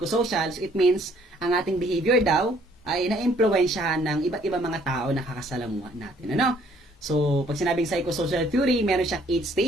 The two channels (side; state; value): both; normal; correlation 0.62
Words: so it means, ang ating behavior daw, ay na-impluwensyahan ng iba't ibang mga tao na kakasalamuha natin. So, pag sinabing psychosocial theory, meron siyang 8